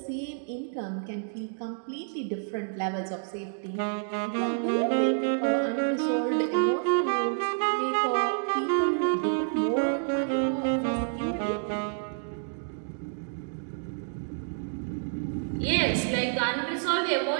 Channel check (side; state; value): left; silent; digital silence